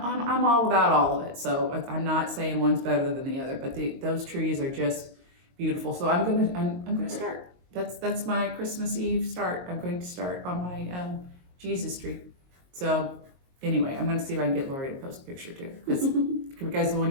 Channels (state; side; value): late; left; 22 ms